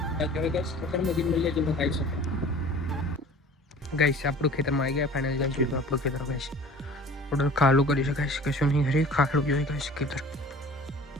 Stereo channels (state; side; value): normal; both; correlation 0.45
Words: ગાઈસ આપણું ખેતરમાં આવી ગયા ફાઇનલ ગાઈસ. જોઈ આપણું ખેતર ગાઈસ ઓર્ડર ખાલું કરી શકાય, કશું નહીં હરી ખાલું જોઈ ગાઈસ ખેતર.